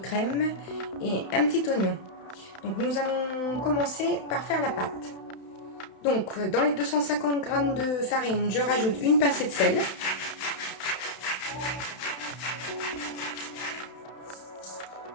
et un petit oignon. Donc nous allons commencer par faire la pâte. Donc dans les 250 g de farine, je rajoute une pincée de sel.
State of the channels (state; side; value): late; right; 31 ms